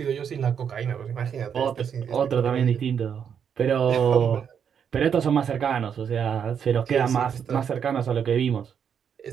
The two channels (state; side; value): quieter; left; 7.7 dB